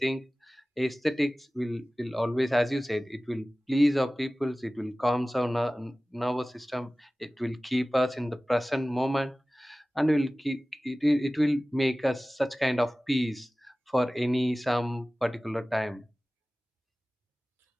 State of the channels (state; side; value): normal; both; correlation 0.97